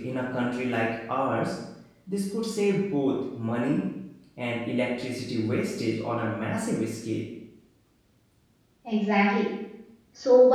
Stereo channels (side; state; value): both; identical; correlation 1.00